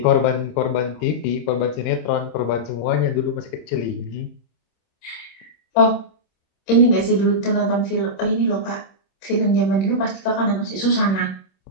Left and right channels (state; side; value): late; right; 26 ms